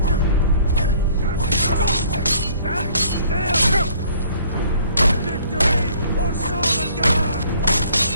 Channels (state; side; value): inverted; both; correlation -0.57